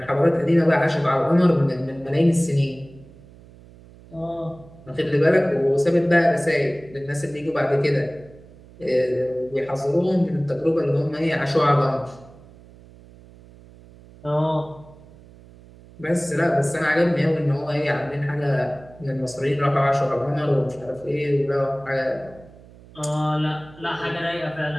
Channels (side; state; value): right; noise; hum, 22 dB below the sound